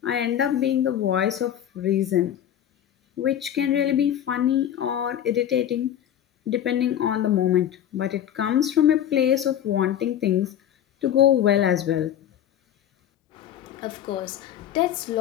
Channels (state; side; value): quieter; right; 10.6 dB